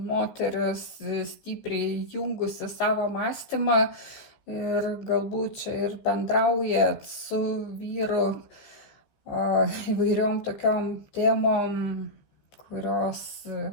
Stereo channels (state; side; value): late; right; 15 ms